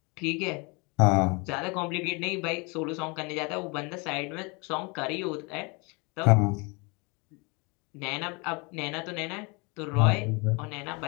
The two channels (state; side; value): quieter; right; 29.4 dB